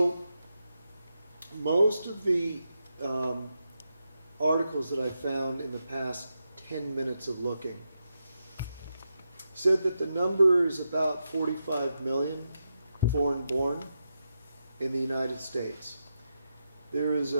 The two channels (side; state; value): both; inverted; correlation -0.86